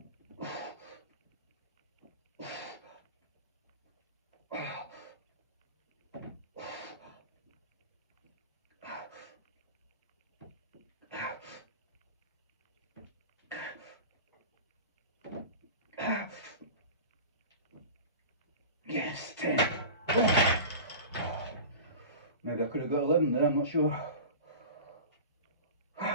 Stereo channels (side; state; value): both; inverted; correlation -0.34